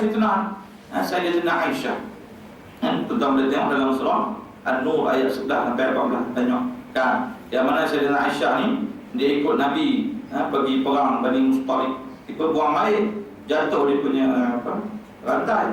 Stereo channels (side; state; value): both; identical; correlation 1.00